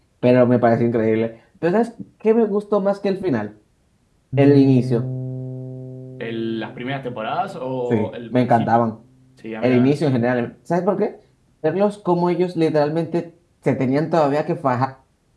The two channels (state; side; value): identical; both; correlation 1.00